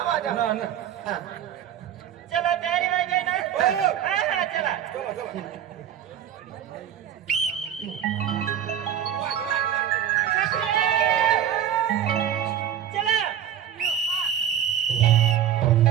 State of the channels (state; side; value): quieter; left; 9.9 dB